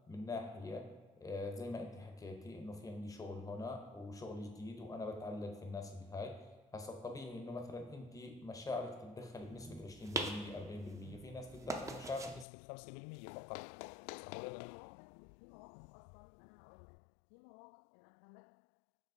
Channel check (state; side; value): drops out; right; at 12.5 s